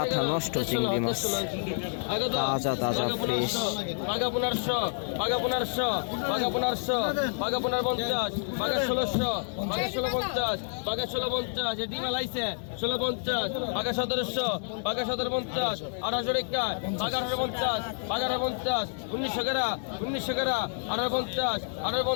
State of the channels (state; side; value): silent; right; 59 dB below the other